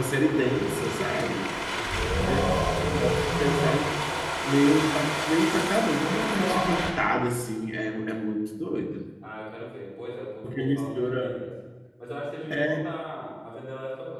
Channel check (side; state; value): both; identical; correlation 1.00